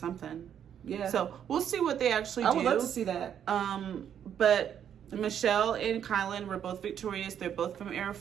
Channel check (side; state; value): left; quieter; 9.1 dB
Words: Yeah. So we'll see what they actually do. I would love to see that. But Michelle and Kylan were both victorious. They're both from Era